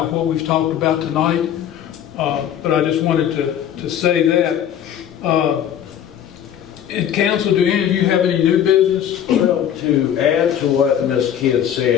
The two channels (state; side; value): quieter; right; 9.8 dB